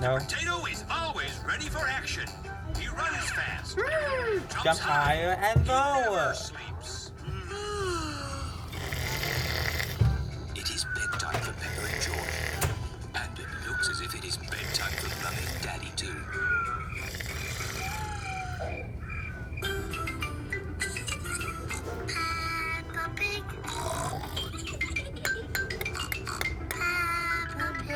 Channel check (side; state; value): both; identical; correlation 1.00